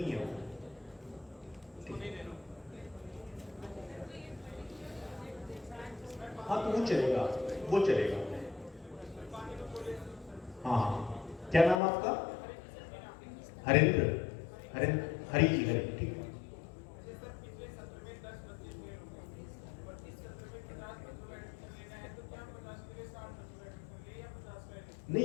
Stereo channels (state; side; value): drops out; right; at 11.8 s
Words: है वो। हाँ तो वो चलेगा, वो चलेगा। हाँ हाँ, क्या नाम आपका? हरेंद्र, हरी जी, हरी, ठीक है।